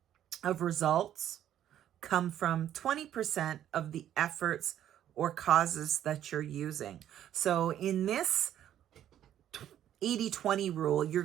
of results come from 20% of the efforts or causes that you're using. So in this 80-20 rule, you're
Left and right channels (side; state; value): left; quieter; 11.1 dB